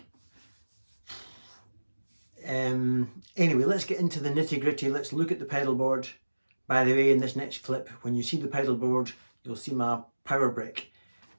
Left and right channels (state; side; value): inverted; both; correlation -1.00